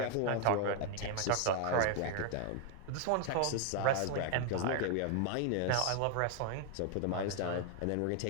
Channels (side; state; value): both; different; correlation 0.00